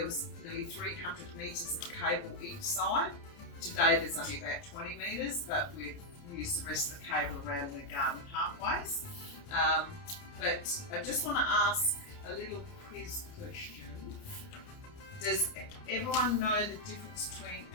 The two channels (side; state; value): right; late; 29 ms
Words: was nearly 300 metres of cable each side. Today there's only about 20 metres, but we've used the rest of the cable around the garden pathways. But I just want to ask a little quiz question. Does everyone know the difference between